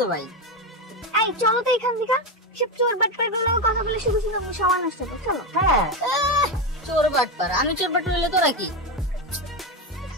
ভাই। এই চলো তো এখান থেকে, সব চোর বাটপার গুলো কথা বলে শুধু শুধু সময় নষ্ট করো। চলো। হ্যাঁ, চোর বাটপার, আমি চোর বাটপার হইলে তোরা কি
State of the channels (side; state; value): both; normal; correlation 0.13